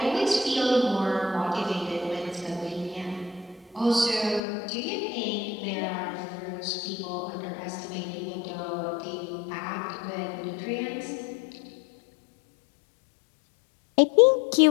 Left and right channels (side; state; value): right; drops out; at 4.4 s